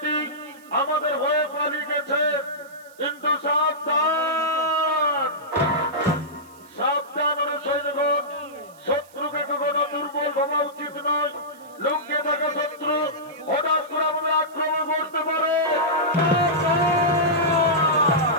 আমাদের হয়ে পালিয়ে গেছে, কিন্তু সাবধান সাবধান সৈন্যগণ, শত্রুকে কখনো দুর্বল ভাবা উচিত নয়। লুকিয়ে থাকা শত্রু হঠাৎ করে আমাদের আক্রমণ করতে পারে।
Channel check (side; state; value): right; noise; hiss, 27 dB below the sound